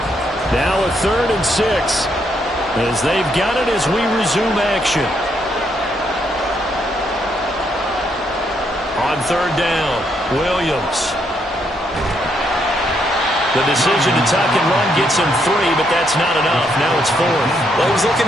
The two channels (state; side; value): normal; both; correlation 0.75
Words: Now a 3rd and 6 as they've got it as we resume action. On 3rd down, Williams. The decision to tuck and run gets him 3, but that's not enough. Now it's 4th. Well, he was